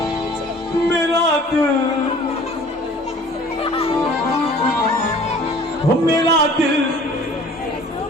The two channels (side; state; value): both; normal; correlation 0.49